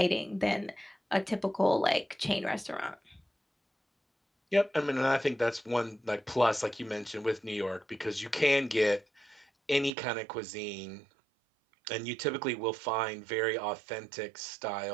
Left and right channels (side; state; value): left; drops out; at 9.9 s